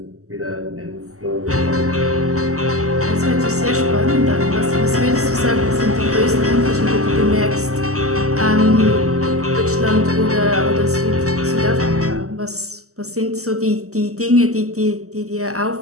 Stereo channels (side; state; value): left; late; 0.65 ms